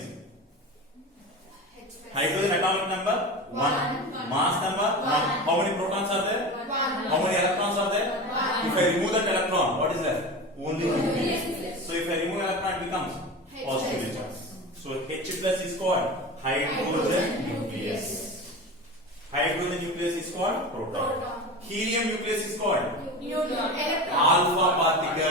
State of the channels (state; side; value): normal; both; correlation 0.29